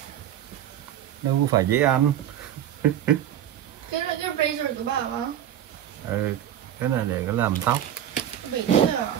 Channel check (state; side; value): quieter; left; 10.8 dB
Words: Đâu có phải dễ ăn. Cái là cái razor của bà không? Ừ, cái này để có làm tóc. Bị đứt à?